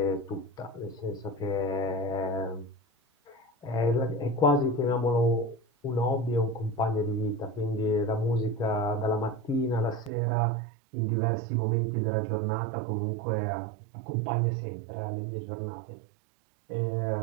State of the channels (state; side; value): drops out; left; at 10.1 s